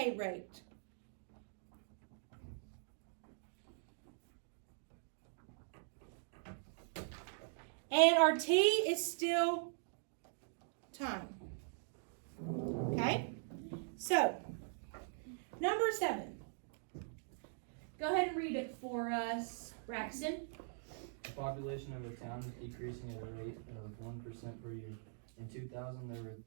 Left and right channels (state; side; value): silent; left; digital silence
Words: rate. And our T is still time. Okay? So, number 7. Go ahead and read it for us, Braxton. The population of a town is decreasing at a rate of 1% per year. In 2000, there were